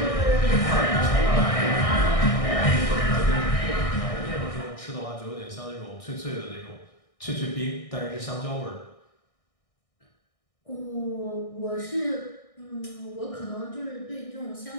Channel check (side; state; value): right; late; 1.6 ms